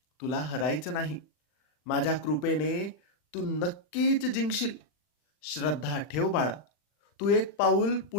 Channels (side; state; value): right; late; 40 ms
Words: तुला हरायचं नाही. माझ्या कृपेने तू नक्कीच जिंकशील. श्रद्धा ठेव बाळा. तू एक पाऊल